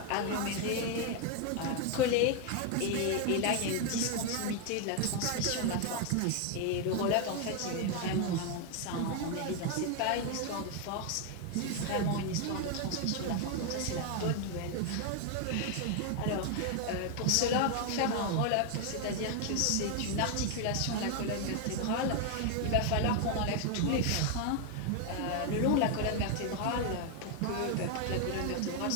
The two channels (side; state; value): both; different; correlation 0.01